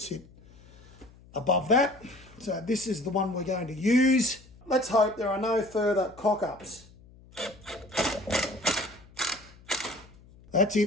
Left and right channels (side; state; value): left; noise; hum, 24 dB below the sound